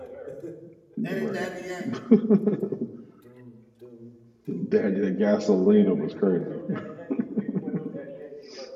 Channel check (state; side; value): identical; both; correlation 1.00